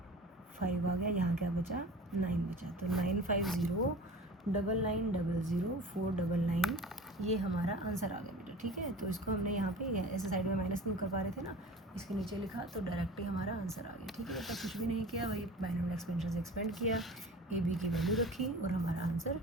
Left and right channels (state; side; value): normal; both; correlation 0.38